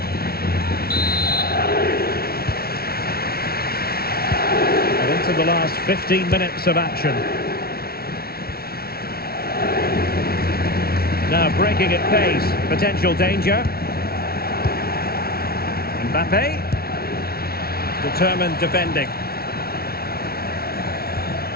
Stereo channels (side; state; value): right; late; 0.44 ms